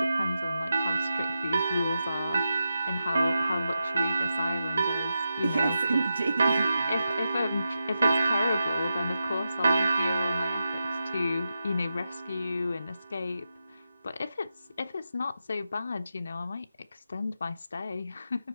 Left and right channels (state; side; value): inverted; both; correlation -0.89